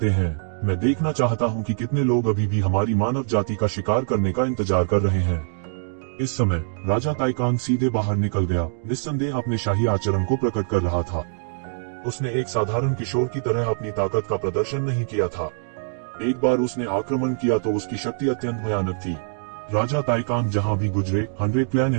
हैं। मैं देखना चाहता हूँ कि कितने लोग अभी भी हमारी मानव जाति का शिकार करने का इंतजार कर रहे हैं। इस समय राजा ताइकान सीधे बाहर निकल गया, निस्संदेह अपने शाही आचरण को प्रकट कर रहा था। उसने एक साधारण किशोर की तरह अपनी ताकत का प्रदर्शन नहीं किया था। एक बार उसने आक्रमण किया तो उसकी शक्ति अत्यंत भयानक थी। राजा ताइकान जहां भी गुजरे, 100 क्लैन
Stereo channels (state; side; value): silent; left; digital silence